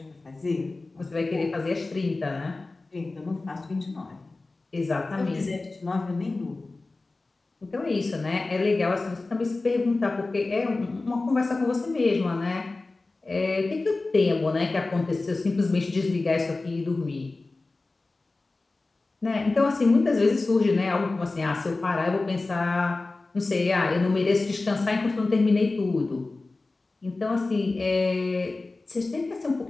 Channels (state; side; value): quieter; right; 3.4 dB